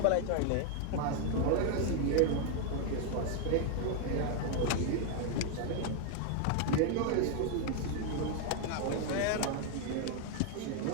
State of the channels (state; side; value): different; both; correlation 0.00